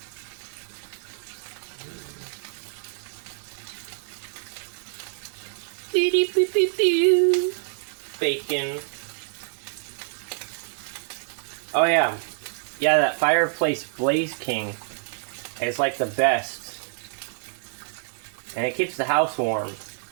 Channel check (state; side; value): silent; left; digital silence